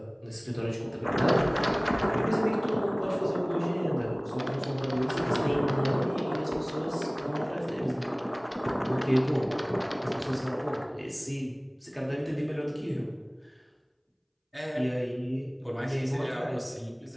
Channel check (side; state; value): both; identical; correlation 1.00